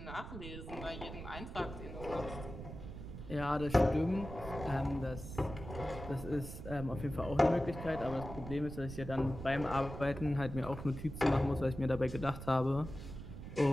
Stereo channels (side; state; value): right; noise; rumble, 10 dB below the sound